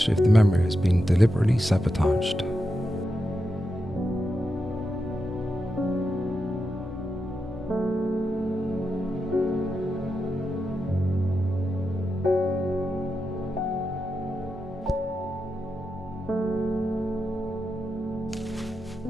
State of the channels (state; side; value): normal; both; correlation 0.87